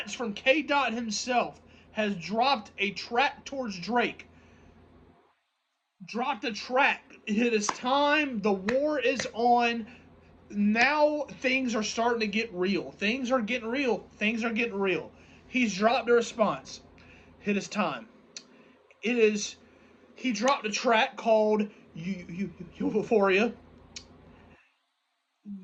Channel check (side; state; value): both; identical; correlation 1.00